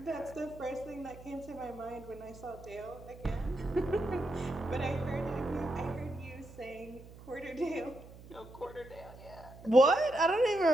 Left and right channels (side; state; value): right; noise; hum, 18 dB below the sound